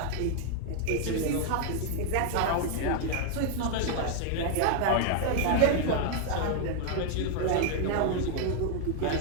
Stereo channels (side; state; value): both; different; correlation 0.01